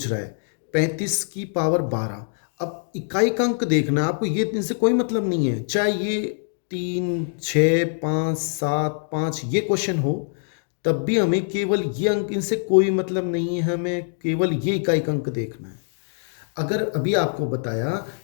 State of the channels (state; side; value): silent; right; digital silence